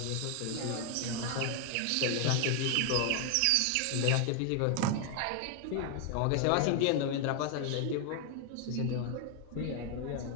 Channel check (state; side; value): different; both; correlation 0.01